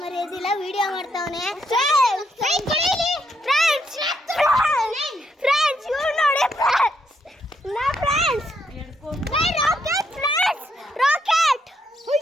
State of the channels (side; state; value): both; normal; correlation 0.76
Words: ಮರೆಯೋದಿಲ್ಲ, ವಿಡಿಯೋ ಮಾಡ್ತಾವನೆ ಫ್ರೆಂಡ್ಸ್.